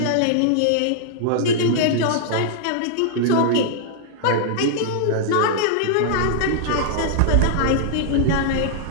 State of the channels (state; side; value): different; both; correlation -0.01